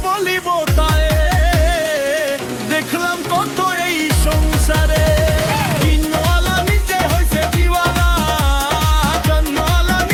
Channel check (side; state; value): both; identical; correlation 1.00